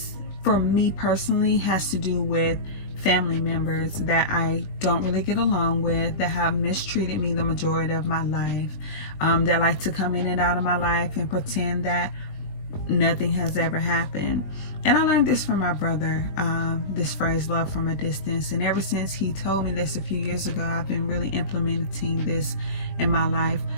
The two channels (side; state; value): right; late; 20 ms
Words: for me personally, has to do with family members that I don't really get along with, that have mistreated me the majority of my life, that like to come in and out of my life and pretend that nothing has ever happened. And I learned this from my brother, this phrase, love from a distance. And ever since he told me this a few years ago, I've been really implementing this in my life